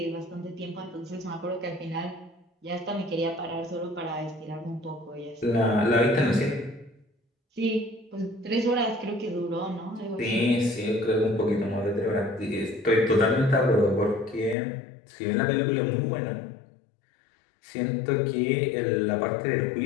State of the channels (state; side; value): drops out; right; at 14.6 s